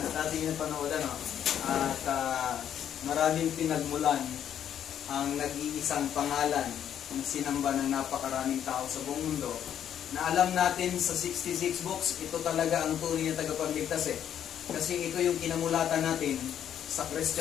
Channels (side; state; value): right; quieter; 9.7 dB